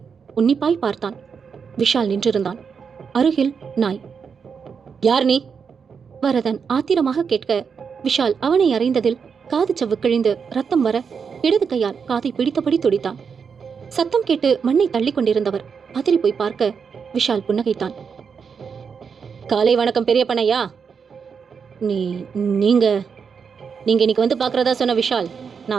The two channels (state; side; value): quieter; left; 6.2 dB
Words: உன்னிப்பாய் பார்த்தான். விஷால் நின்றிருந்தான். அருகில் நாய். யார் நீ? வரதன் ஆத்திரமாக கேட்க விஷால் அவனை அறைந்ததில் காது சவ்வு கிழிந்து ரத்தம் வர இடது கையால் காதை பிடித்தபடி துடித்தான். சத்தம் கேட்டு மண்ணை தள்ளி கொண்டிருந்தவர் பதறி போய் பார்க்க விஷால் புன்னகைத்தான். காலை வணக்கம் பெரிய பண்ணையா. நீங்க இன்னைக்கு வந்து பார்க்கறதா சொன்ன விஷால்